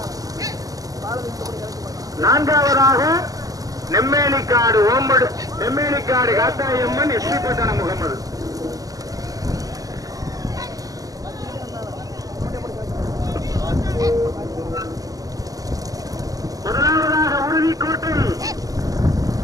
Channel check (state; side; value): late; left; 0.17 ms